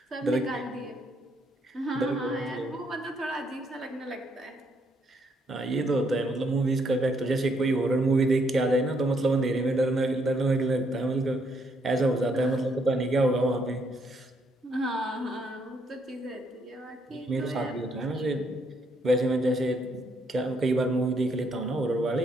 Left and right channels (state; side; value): normal; both; correlation 0.72